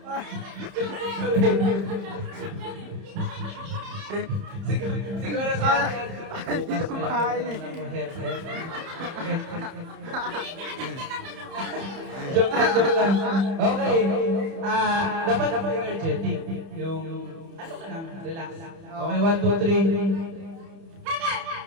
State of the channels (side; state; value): left; late; 30 ms